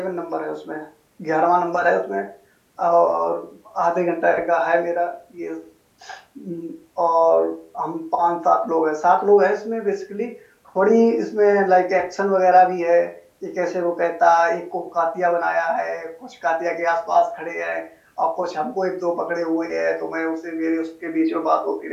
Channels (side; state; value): both; identical; correlation 1.00